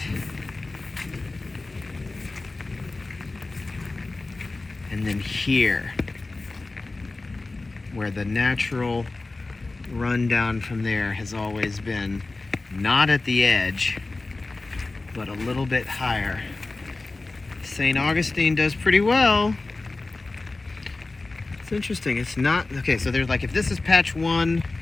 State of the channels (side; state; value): right; quieter; 3.3 dB